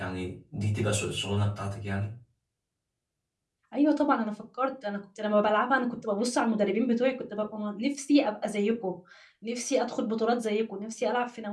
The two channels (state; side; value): identical; both; correlation 1.00